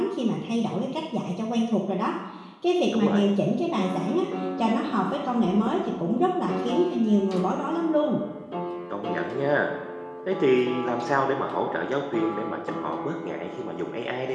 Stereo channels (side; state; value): both; identical; correlation 1.00